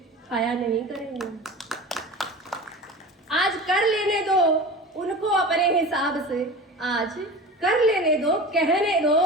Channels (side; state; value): both; normal; correlation 0.34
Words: खाया नहीं करेंगे। आज कर लेने दो उनको अपने हिसाब से, आज कर लेने दो, कहने दो